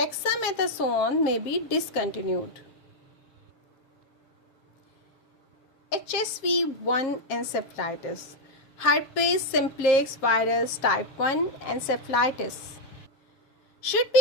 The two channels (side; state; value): right; late; 7.5 ms